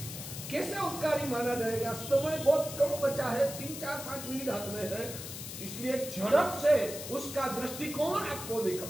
कैसे उपकारी माना जाएगा? समय बहुत कम बचा है, 3, 4, 5 मिनट हाथ में है, इसलिए झड़प से उसका दृष्टिकोण आपको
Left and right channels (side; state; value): left; noise; hiss, 9 dB below the sound